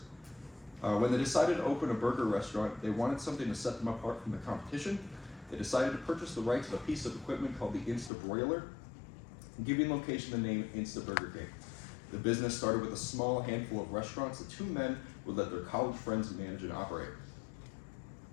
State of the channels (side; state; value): right; drops out; at 8.1 s